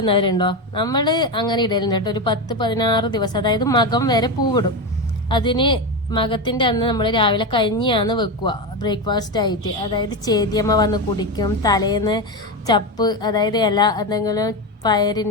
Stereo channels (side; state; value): both; normal; correlation 0.15